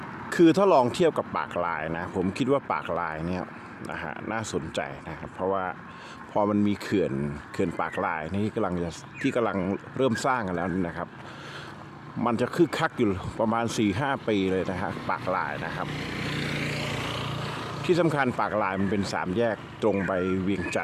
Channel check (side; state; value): both; identical; correlation 1.00